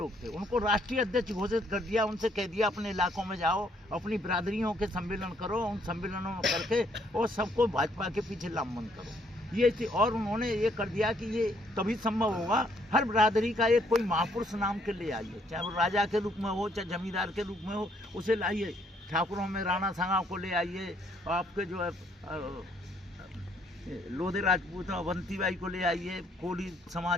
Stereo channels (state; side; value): normal; both; correlation 0.68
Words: थे, उनको राष्ट्रीय अध्यक्ष घोषित कर दिया। उनसे कह दिया अपने इलाकों में जाओ, अपनी बिरादरियों के सम्मेलन करो, उन सम्मेलनों में करके और सबको भाजपा के पीछे लामबंद करो। ये थी। और उन्होंने ये कर दिया कि ये तभी संभव होगा हर बिरादरी का एक कोई महापुरुष नाम के ले आइए, चाहे वो राजा के रूप में हो, चाहे जमींदार के रूप में हो, उसे लाइए। ठाकुरों में राणा सांगा को ले आइए, आपके जो है लोधे राजपूत अवंती बाई को ले आइए, कोली